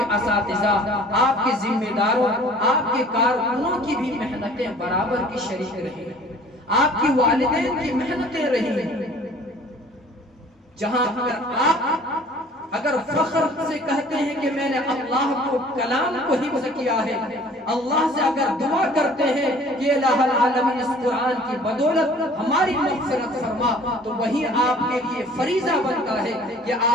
اساتذہ، آپ کے ذمہ داروں، آپ کے کارکنوں کی بھی محنتیں برابر کی شریک رہی ہیں، آپ کی والدین کی محنتیں رہی ہیں۔ جہاں اگر فخر سے کہتے ہیں کہ میں نے اللہ کو کلام کو حفظ کیا ہے، اللہ سے اگر دعا کرتے ہیں کہ الہ العالمین اس قرآن کی بدولت ہماری مغفرت فرما، تو وہی آپ کے لیے فریضہ بنتا ہے کہ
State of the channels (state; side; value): normal; both; correlation 0.50